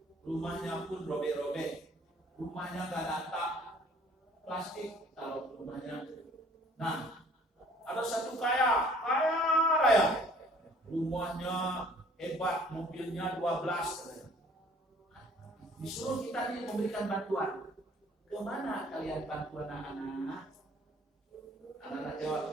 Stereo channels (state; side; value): normal; both; correlation 0.56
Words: rumahnya pun robek-robek, rumahnya nggak ada atap, plastik taruh rumahnya. Nah, ada satu kaya raya, rumahnya hebat, mobilnya 12. Disuruh kita ini memberikan bantuan. Kemana kalian bantu anak-anak? Anak-anak